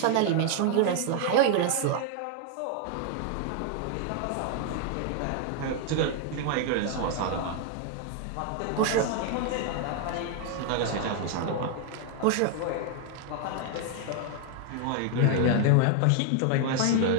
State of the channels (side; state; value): both; different; correlation 0.00